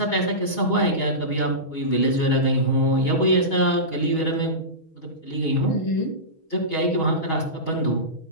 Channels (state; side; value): late; right; 6.3 ms